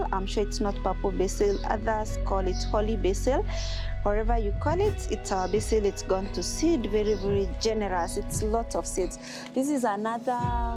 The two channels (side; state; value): both; identical; correlation 1.00